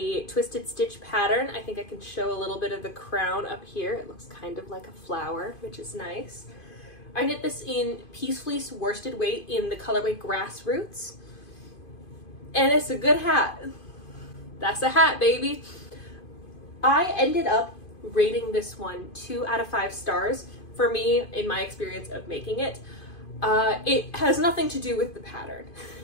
twisted stitch pattern. I think I can show a little bit of the crown up here. It looks kind of like a flower, which is nice. I knit this in Peace Fleece worsted weight in the colorway Grassroots. And it's a good hat. That's a hat, baby. I ended up rating this one 2 out of 5 stars. For me, in my experience of making it, it has nothing to do with the pattern.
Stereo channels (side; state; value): right; late; 2.5 ms